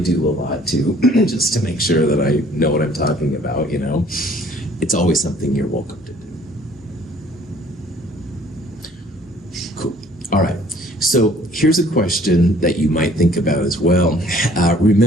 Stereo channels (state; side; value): normal; both; correlation 0.56